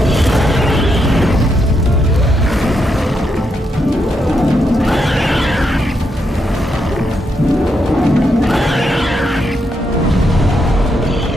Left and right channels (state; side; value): normal; both; correlation 0.80